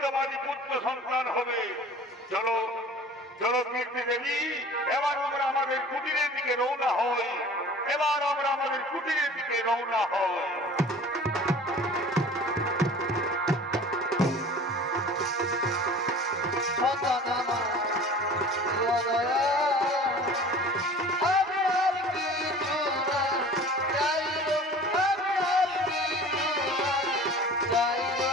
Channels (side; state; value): both; normal; correlation 0.43